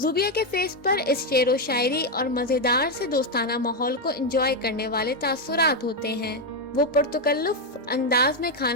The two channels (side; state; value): both; normal; correlation 0.05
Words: کے فیس پر اس شعر و شاعری اور مزیدار سے دوستانہ ماحول کو انجوائے کرنے والے تاثرات ہوتے ہیں۔ وہ پرتکلف انداز میں